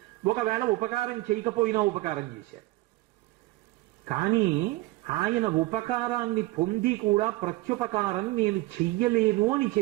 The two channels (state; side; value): quieter; left; 19.6 dB